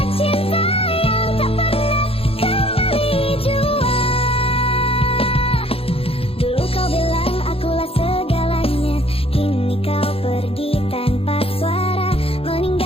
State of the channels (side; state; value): right; late; 0.27 ms